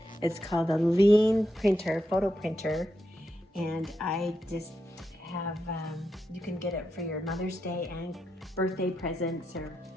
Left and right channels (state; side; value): normal; both; correlation 0.85